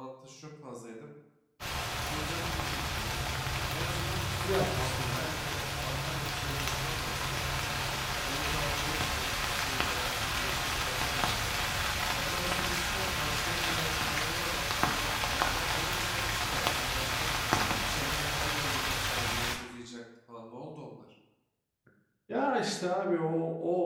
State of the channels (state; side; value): identical; both; correlation 1.00